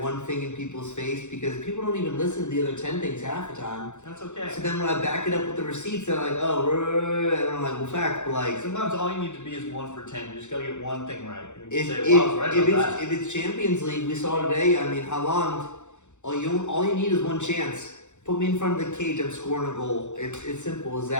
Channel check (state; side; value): late; right; 0.84 ms